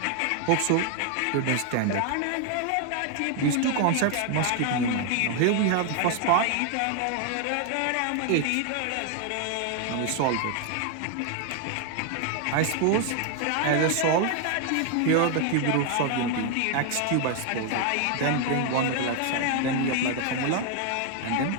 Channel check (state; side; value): different; both; correlation 0.00